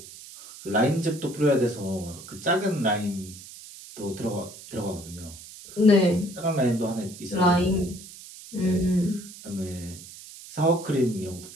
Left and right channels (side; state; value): right; noise; hiss, 16 dB below the sound